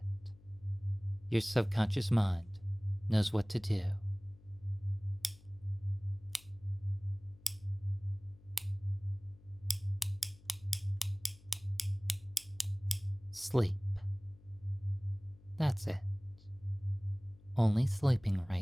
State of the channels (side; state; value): left; noise; hum, 24 dB below the sound